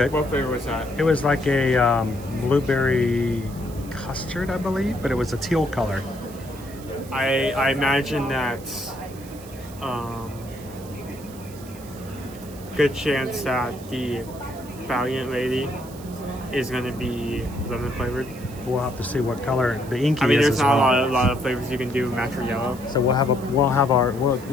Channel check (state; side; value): noise; right; hiss, 20 dB below the sound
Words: What flavor was that? It was like a blueberry custard, I believe, but it was a teal color. I imagine that good chance that the Valiant Lady is going to be lemon flavored. We'll have to see what color the inky is. I mean, there's as not well. a lot of flavors you can do, match or yellow. So we'll